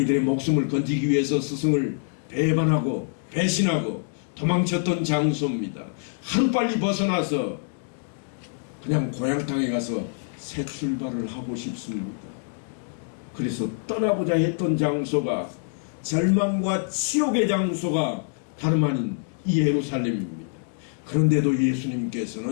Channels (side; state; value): right; silent; digital silence